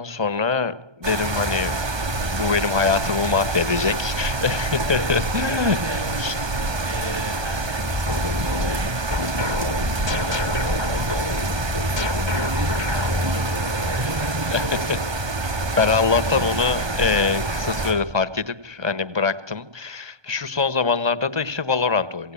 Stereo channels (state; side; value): late; left; 1.2 ms